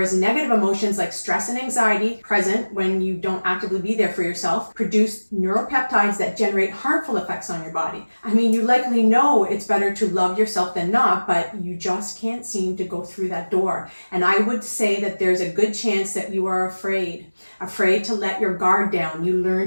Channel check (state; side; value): inverted; both; correlation -1.00